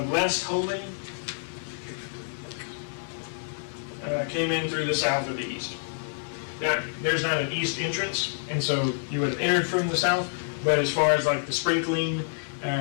less holy came in through the south or the east. Now, there's not an east entrance, and so you would have entered from the south, but as far as like the sprinkling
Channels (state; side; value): silent; right; 60 dB below the other